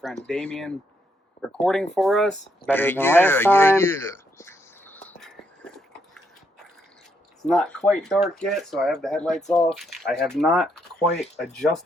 Damien recording for us. Better than last time. It's not quite dark yet, so I have the headlights off. I have not quite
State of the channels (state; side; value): normal; both; correlation 0.76